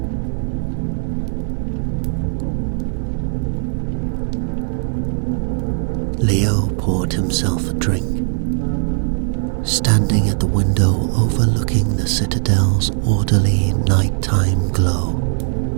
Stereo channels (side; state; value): left; silent; digital silence